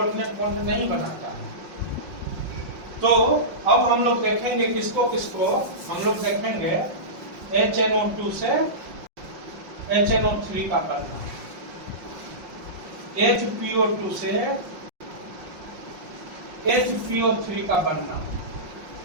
बॉन्ड नहीं बनाता है। तो अब हम लोग देखेंगे किसको किसको, हम लोग देखेंगे HNO2 से HNO3 का बनना, HPO2 से HPO3 का बनना।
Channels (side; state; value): left; late; 5.6 ms